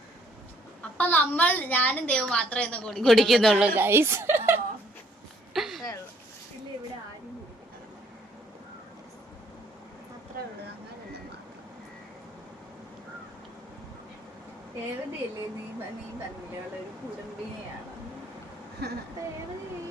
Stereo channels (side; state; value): both; normal; correlation 0.64